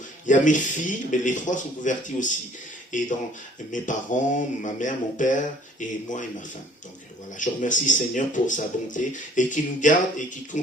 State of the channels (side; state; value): both; normal; correlation 0.57